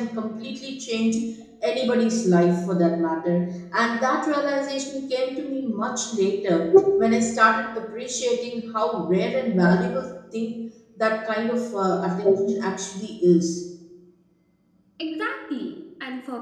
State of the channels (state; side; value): identical; both; correlation 1.00